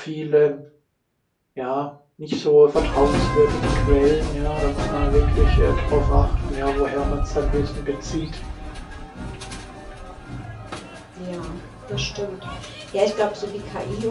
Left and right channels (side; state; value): both; identical; correlation 1.00